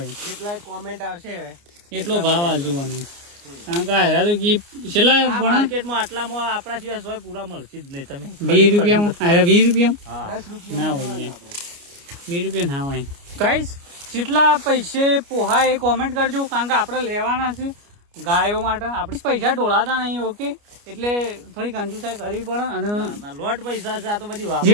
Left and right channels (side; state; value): left; late; 29 ms